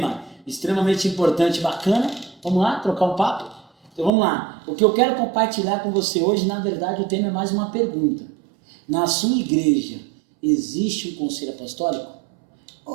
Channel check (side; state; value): left; drops out; at 4.1 s